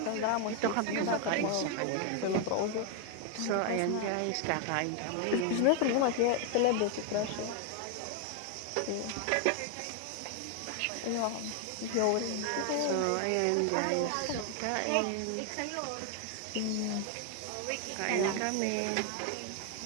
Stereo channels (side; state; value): both; different; correlation 0.01